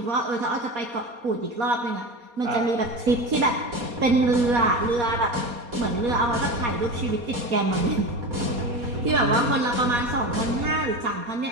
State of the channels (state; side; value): late; left; 4.2 ms